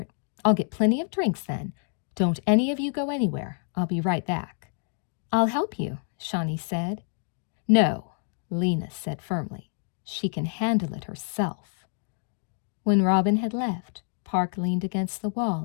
I'll get plenty of drinks then. Don't any of you go anywhere. I'll be right back. I'll help you, Shawnee said. No, Lena said firmly. She can handle it herself. When Robin had left, Park leaned against the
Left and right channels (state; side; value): silent; right; digital silence